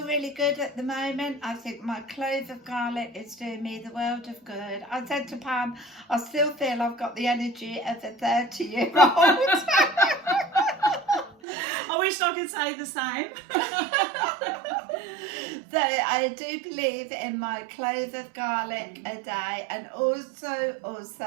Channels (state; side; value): drops out; left; at 11.4 s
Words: really good at the moment. I think my clove of garlic is doing me the world of good. I said to Pam, I still feel I've got the energy of a 30-year-old. I wish I could say the same. So I do believe in my clove of garlic a day, and also